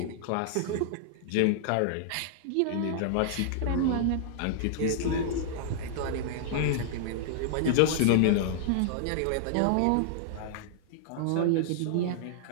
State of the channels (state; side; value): different; both; correlation -0.01